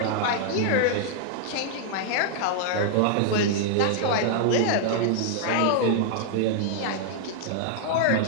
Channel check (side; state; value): both; different; correlation -0.01